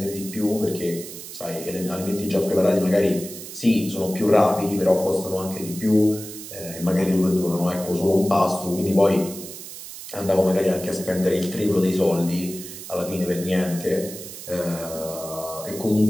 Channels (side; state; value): right; noise; hiss, 12 dB below the sound